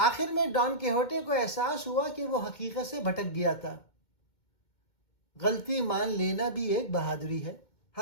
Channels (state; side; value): late; right; 2.2 ms